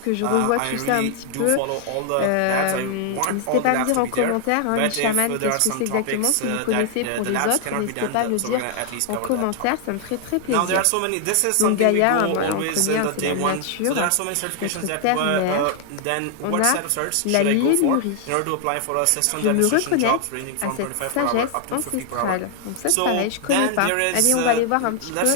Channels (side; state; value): both; different; correlation 0.00